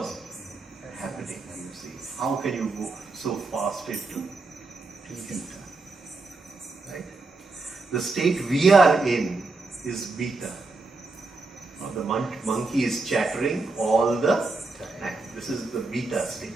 happening. You see, how can you go so fast into theta? Right? The state we are in is beta. Now the monkey is chattering all the time. This is the beta state.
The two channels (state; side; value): quieter; left; 3.6 dB